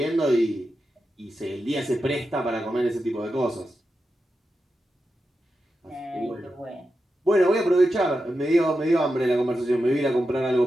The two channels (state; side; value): normal; both; correlation 0.89